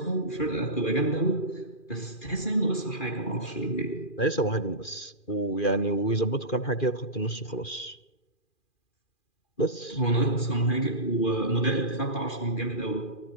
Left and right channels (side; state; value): right; late; 2.4 ms